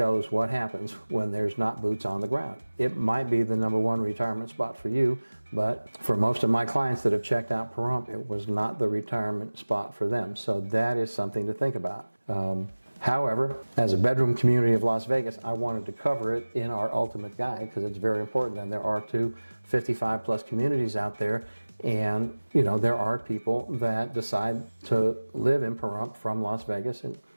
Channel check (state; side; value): inverted; both; correlation -1.00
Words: what happens when there's not boots on the ground. It might be the #1 retirement spot for you, but for most of my clients that have checked out Pahrump, it was not the retirement spot for them. So that is something to think about. However, as a bedroom community of Las Vegas, I wanted to cover it in our ultimate guide because it's very important. And there are 55 plus communities out there. And, there are people that decide to live in Pahrump from Las Vegas, and